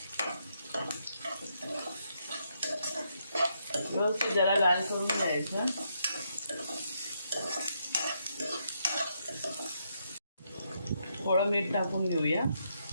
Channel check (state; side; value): inverted; both; correlation -0.78